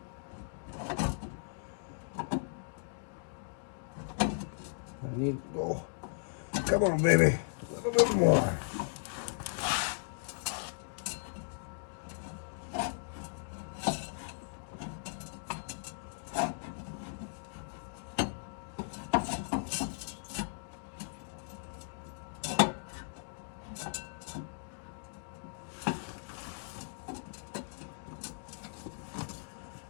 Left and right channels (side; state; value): right; silent; digital silence